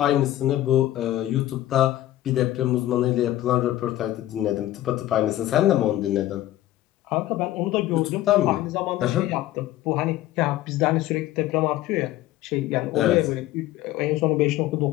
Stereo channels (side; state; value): right; quieter; 14.5 dB